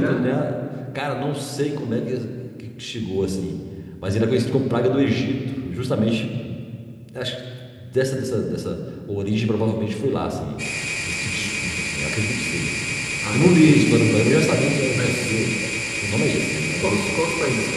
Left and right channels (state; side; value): identical; both; correlation 1.00